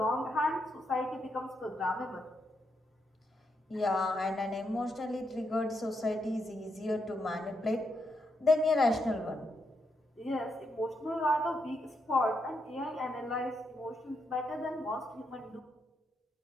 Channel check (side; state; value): both; normal; correlation 0.81